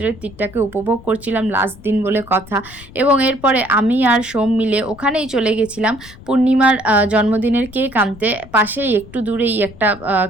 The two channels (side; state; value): left; noise; rumble, 20 dB below the sound